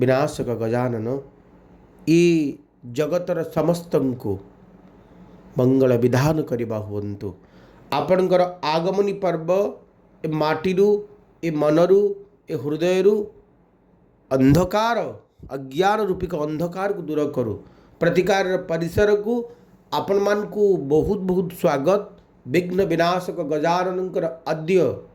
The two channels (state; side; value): identical; both; correlation 1.00